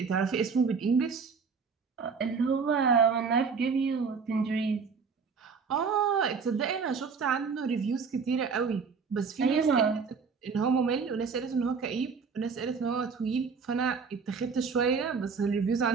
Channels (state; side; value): quieter; left; 5.4 dB